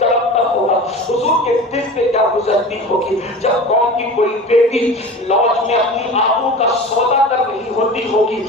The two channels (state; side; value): normal; both; correlation 0.34